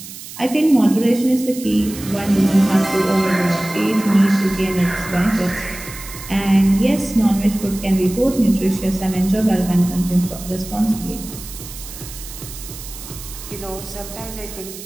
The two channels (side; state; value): right; noise; hiss, 13 dB below the sound